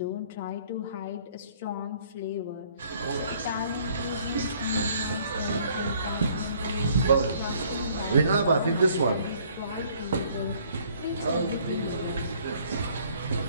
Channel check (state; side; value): inverted; both; correlation -0.60